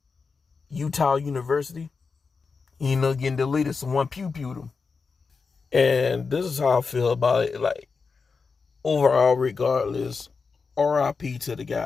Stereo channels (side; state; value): right; quieter; 4.9 dB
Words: Utah University. Getting deleted. Someone pew-pewed him. And this is how I feel about it. Like, overall, regardless, RIP to the